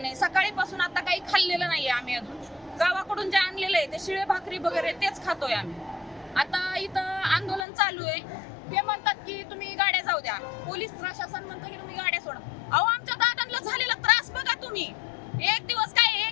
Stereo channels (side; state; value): right; drops out; at 7.7 s